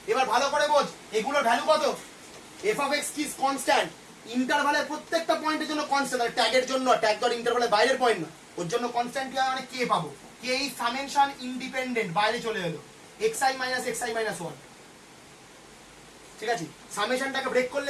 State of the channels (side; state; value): both; identical; correlation 1.00